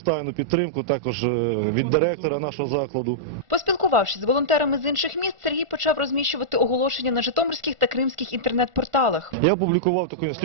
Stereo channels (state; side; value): late; left; 1.4 ms